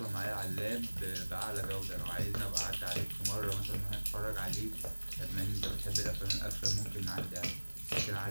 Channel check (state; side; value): inverted; both; correlation -1.00